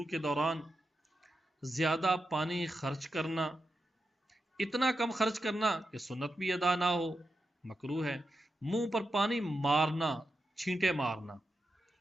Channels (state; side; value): normal; both; correlation 0.88